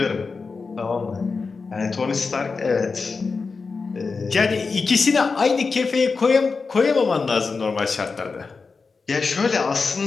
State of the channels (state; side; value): quieter; right; 4.6 dB